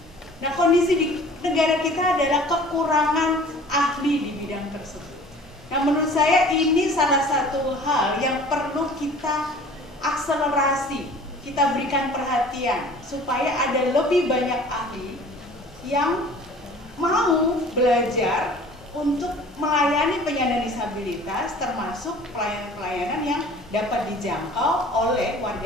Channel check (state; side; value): normal; both; correlation 0.47